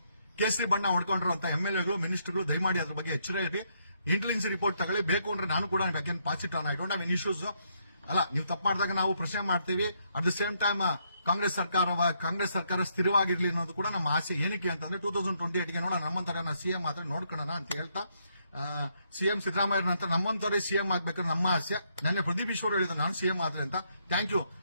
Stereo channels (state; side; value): inverted; both; correlation -0.74